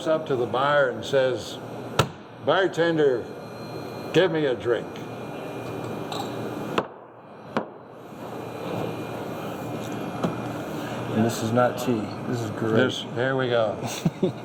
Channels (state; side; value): identical; both; correlation 1.00